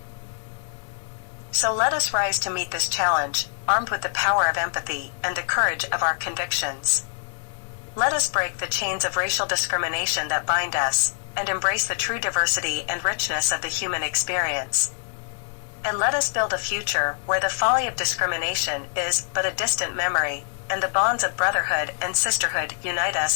So let us rise to meet this challenge, armed with the power of empathy and the courage of our convictions. Let us break the chains of racial discrimination that bind us, and embrace the true diversity and richness of the human experience. And let us build a future where the folly of discrimination is but a distant memory, and the bonds of brotherhood and sisterhood unite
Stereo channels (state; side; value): silent; right; digital silence